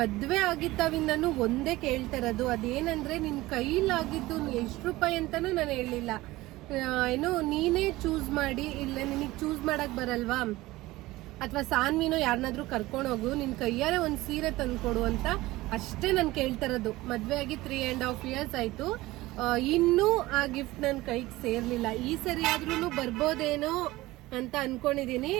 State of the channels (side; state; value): left; quieter; 18.6 dB